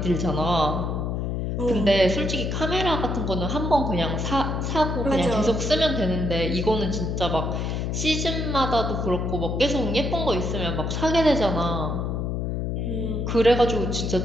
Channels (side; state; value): left; noise; hum, 1 dB below the sound